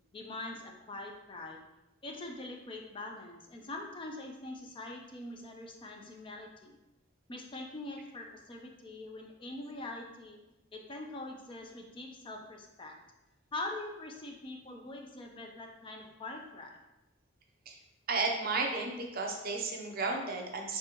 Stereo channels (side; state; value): both; normal; correlation 0.01